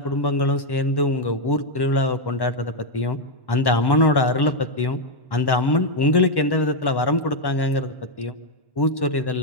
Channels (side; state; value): right; late; 1.1 ms